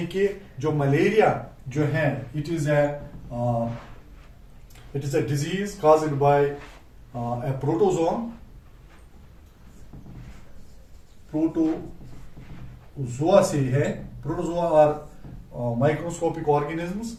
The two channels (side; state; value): both; identical; correlation 1.00